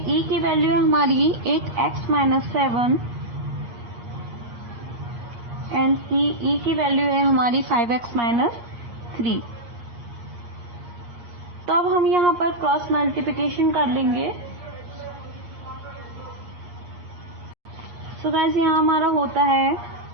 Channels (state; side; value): late; left; 8.5 ms